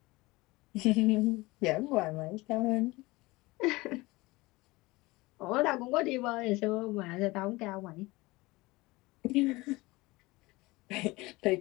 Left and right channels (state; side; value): quieter; right; 21.7 dB